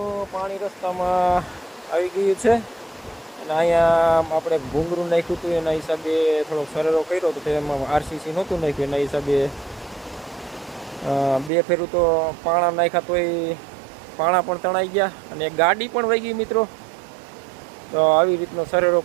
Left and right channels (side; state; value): left; drops out; at 11.5 s